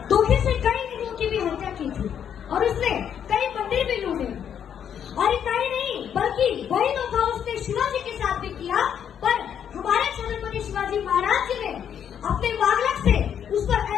धोखे से कई लोगों की भी हत्या की थी और उसने कई मंदिर भी लूटे, और इतना ही नहीं बल्कि वही धोखा उसने शिवाजी के साथ भी किया। पर हमारे छत्रपति शिवाजी महाराज जी ने अपने वागलक से उस पर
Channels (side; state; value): right; quieter; 8.7 dB